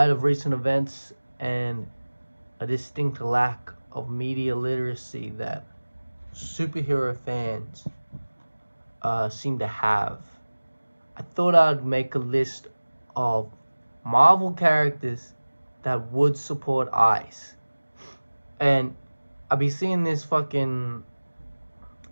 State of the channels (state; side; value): inverted; both; correlation -1.00